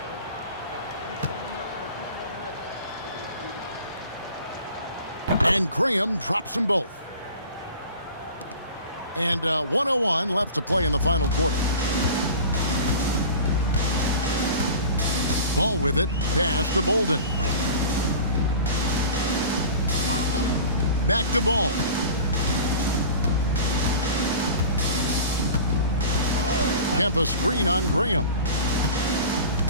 And Graham drops them both. And 1:01 left to play in the final quarter. Ball with it. Pass to Bolden. Back to Ball. Kempa screen on Graham.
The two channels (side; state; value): both; inverted; correlation -0.38